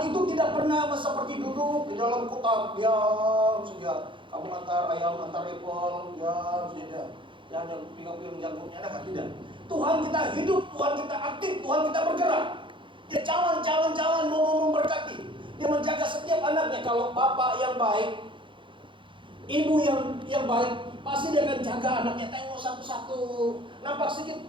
itu tidak pernah seperti duduk di dalam kotak diam saja. Kamu antar ayam, antar apel, diam saja. Jangan pilih jangkuknya, tidak. Tuhan kita hidup, Tuhan kita aktif, Tuhan kita bergerak. Dia jalan mau memberkati. Dia menjaga setiap anaknya. Kalau bapak yang baik, ibu yang baik, pasti dia akan jaga anaknya, tengok satu-satu. Nampak sedikit,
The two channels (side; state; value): left; late; 0.24 ms